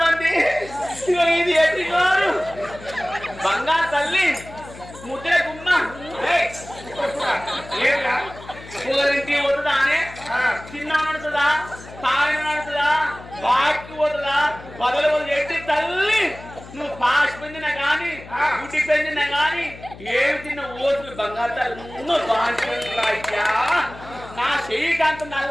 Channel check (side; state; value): left; noise; hum, 17 dB below the sound